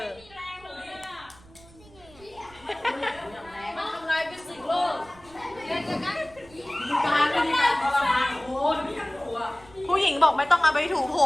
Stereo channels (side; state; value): right; noise; rumble, 24 dB below the sound